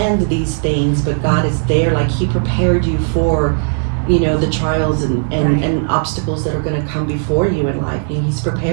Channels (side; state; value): left; silent; digital silence